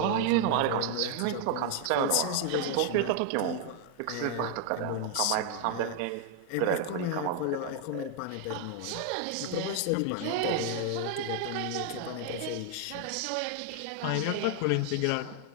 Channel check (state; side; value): different; both; correlation 0.00